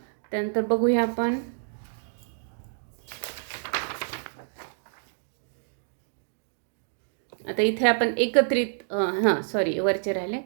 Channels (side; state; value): left; silent; digital silence